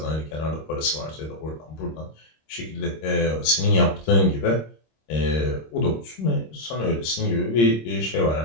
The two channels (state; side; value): late; right; 26 ms